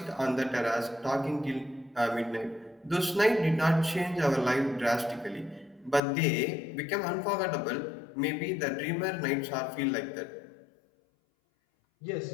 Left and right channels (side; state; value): right; drops out; at 6.0 s